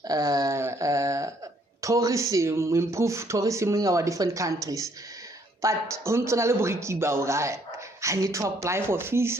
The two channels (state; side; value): normal; both; correlation 0.66